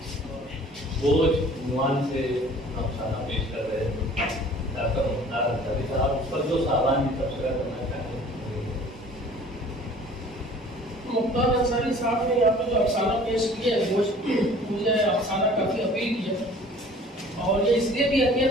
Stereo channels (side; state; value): both; normal; correlation 0.50